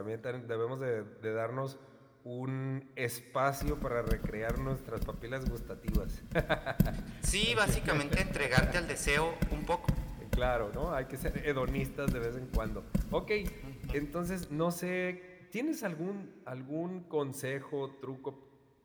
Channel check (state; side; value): identical; both; correlation 1.00